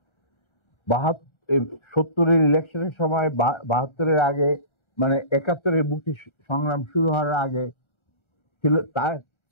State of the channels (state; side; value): late; right; 1.4 ms